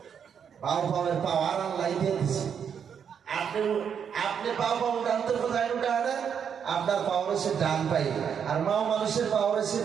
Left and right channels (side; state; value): left; quieter; 7.6 dB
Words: পাও পাওয়ের পাওয়ার আল্লাহ দিয়ে দিচ্ছে। আপনি পাও পাও ডানতে কোথায় উঠায় না, আপনার পাওয়ার হচ্ছে ডান পাই, আর মাও মানুষের পাওয়ার হচ্ছে